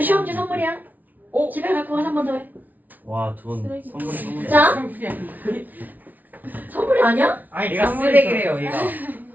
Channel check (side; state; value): left; late; 0.079 ms